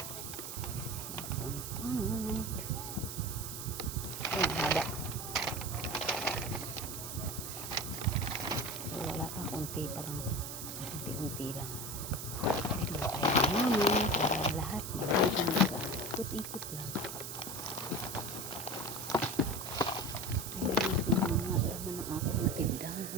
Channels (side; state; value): right; noise; hiss, 7 dB below the sound